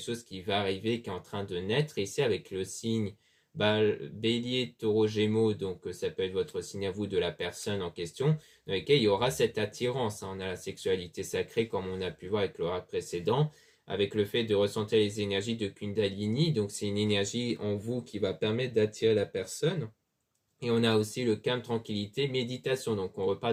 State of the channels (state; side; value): identical; both; correlation 1.00